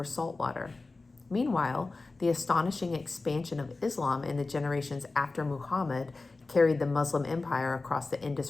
salt water. Meanwhile, the astonishing expansion of Islam in the generations after Muhammad carried the Muslim empire across the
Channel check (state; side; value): quieter; right; 3.5 dB